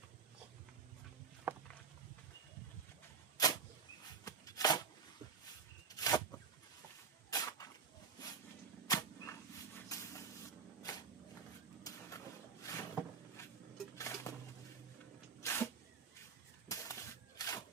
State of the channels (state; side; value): quieter; left; 5.8 dB